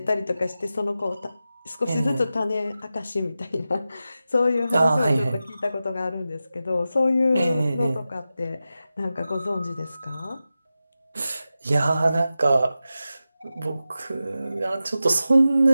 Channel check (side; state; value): both; inverted; correlation -0.93